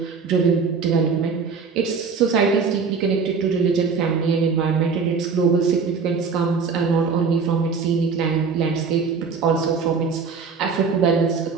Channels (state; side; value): quieter; left; 5.3 dB